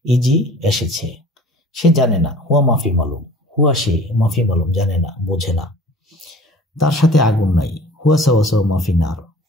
ইজি এসেছে। সে জানে না, হুয়া মাফি মালুম, হুয়া সে, মাফি মালুম জানে না, বোঝে না। তার সাথে আগুন নাই, হুয়া সাওয়া সাওয়া মাফি নার,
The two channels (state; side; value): normal; both; correlation 0.46